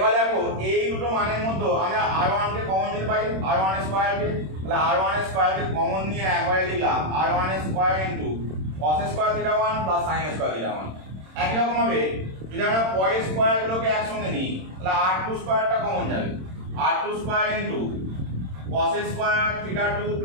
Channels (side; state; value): left; late; 26 ms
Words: দেখো এই দুটো মানের মধ্যে আমরা r1 কে কমন নিতে পারি, r1 এর স্কয়ার কে, তাহলে r1 এর স্কয়ার কে কমন নিয়ে একবারে লিখলাম r1 এর স্কয়ার ইনটু cos এর স্কয়ার থিটা 1 প্লাস sin এর স্কয়ার থিটা 1। একই রকম ভাবে যদি আমরা পরের স্কয়ারগুলোকে একসঙ্গে নিই তাহলে r2 স্কয়ারটা কমন যাবে, r2 স্কয়ার ইনটু cos এর স্কয়ার থিটা 2